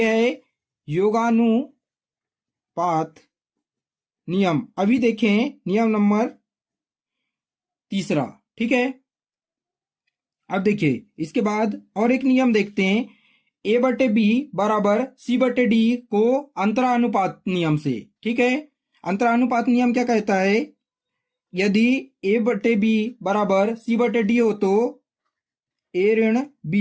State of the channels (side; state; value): both; identical; correlation 1.00